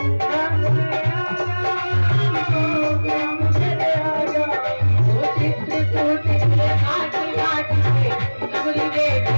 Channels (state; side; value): inverted; both; correlation -1.00